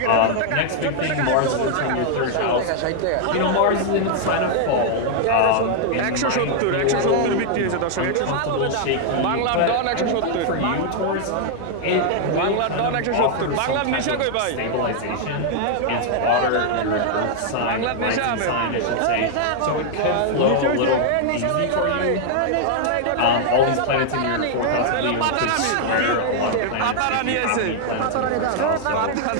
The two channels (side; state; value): both; different; correlation 0.00